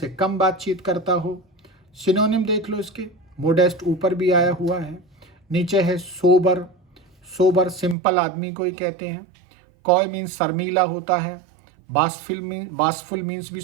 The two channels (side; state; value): left; drops out; at 8.0 s